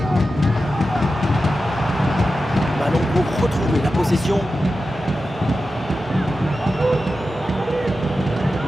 Ballon pour retrouver la possession.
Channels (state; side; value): normal; both; correlation 0.92